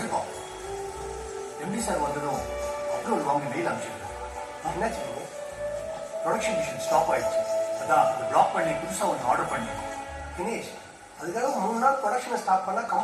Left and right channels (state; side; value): identical; both; correlation 1.00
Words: எம்டி சார் வந்ததும் அப்ரூவல் வாங்கி மெயில் அனுப்பிச்சிருக்கேன். என்னாச்சு? ப்ரொடக்ஷன் மிஷின் ஸ்டாப் ஆயிடுச்சு. அதான் அதை பிளாக் பண்ணி புதுசா ஒன்று ஆர்டர் பண்ணிருக்கோம். தினேஷ் அதுக்காக 3 நாள் ப்ரொடக்ஷனை ஸ்டாப் பண்ணா